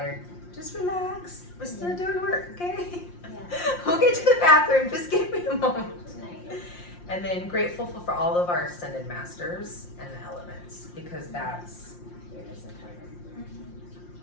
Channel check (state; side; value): late; right; 5.7 ms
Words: just relax. We're still doing work, okay? Yeah. We'll get to the bathroom. Just give me a moment. Nice. And then grateful for all of our ascended masters and the elements, because that's.